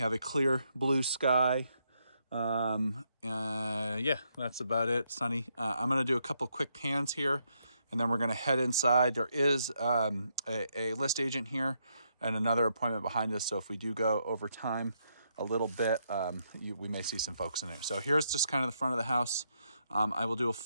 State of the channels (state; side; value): inverted; both; correlation -0.77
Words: a clear blue sky. Yeah, that's about it. Sunny. I'm going to do a couple quick pans here, and then we're going to head inside. There is a list agent here and another appointment behind us. So if we do go over time a little bit, we may see some folks in there. So here's just kind of the front of the house. I will do a